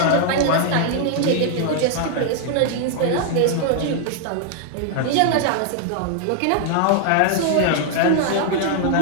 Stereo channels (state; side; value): different; both; correlation 0.00